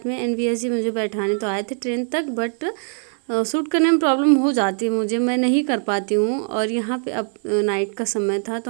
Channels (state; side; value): silent; left; 56 dB below the other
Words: में, एनवीएस जी मुझे बैठाने तो आए थे ट्रेन तक, बट शूट करने में प्रॉब्लम हो जाती है मुझे, मैं नहीं कर पाती हूँ। और यहाँ पे अब नाइट का समय था तो